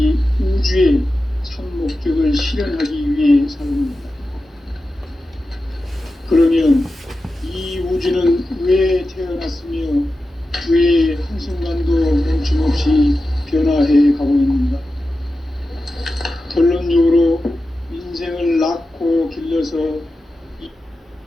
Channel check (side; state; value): both; normal; correlation 0.92